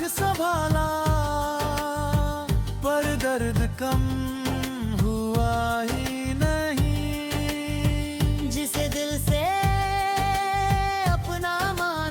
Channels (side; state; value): both; identical; correlation 1.00